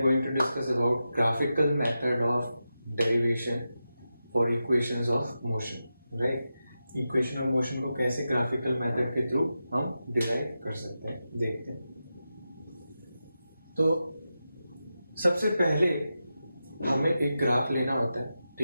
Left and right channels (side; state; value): both; inverted; correlation -0.90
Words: going to discuss about graphical method of derivation for equations of motion, right? Equation of motion को कैसे graphical method के through हम derive कर सकते हैं देखते हैं. तो सबसे पहले हमें एक ग्राफ लेना होता है,